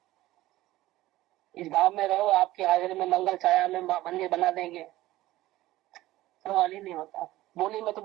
इस भाव में रहो, आपकी हाजिरी में मंगल छाया में मंदिर बना देंगे। सवाल ही नहीं होता। बोली में तो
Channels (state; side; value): quieter; left; 16.4 dB